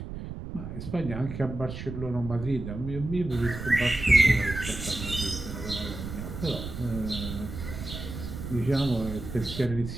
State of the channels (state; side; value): noise; right; rumble, 8 dB below the sound